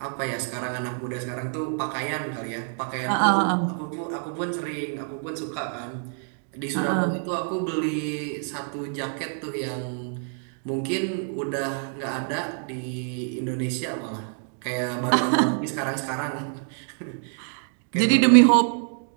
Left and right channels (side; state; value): left; silent; 59 dB below the other